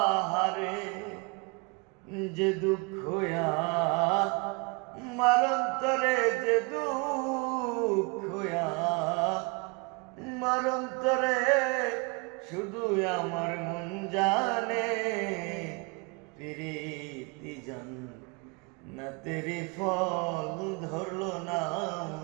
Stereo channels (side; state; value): left; quieter; 29.9 dB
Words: যে দুঃখ আমার অন্তরে, যে দুঃখ আমার অন্তরে, শুধু আমার মন জানে। প্রীতি জান না তেরি ফল ধরলো না